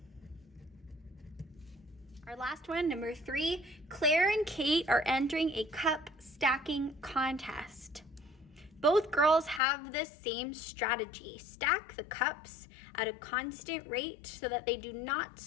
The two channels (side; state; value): right; drops out; at 9.6 s